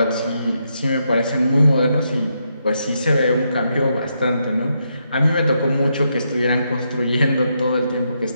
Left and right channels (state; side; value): inverted; both; correlation -0.80